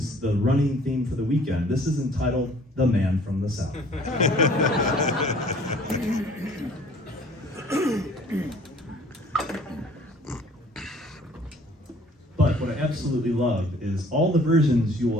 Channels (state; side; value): normal; both; correlation 0.53